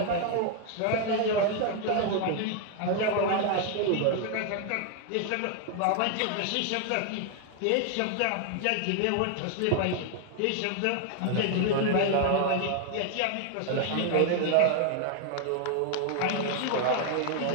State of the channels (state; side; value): different; both; correlation 0.00